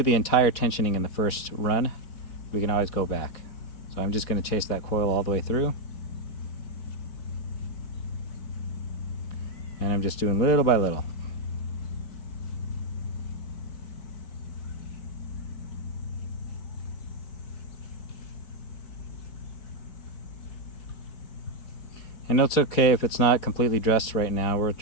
the entire tensioning in the first run. We can always go back. So I'm just going to chase that coil all the way through. And I'm just doing little by little. And it's okay if it's not completely dressed right now. We'll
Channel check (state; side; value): late; right; 4.7 ms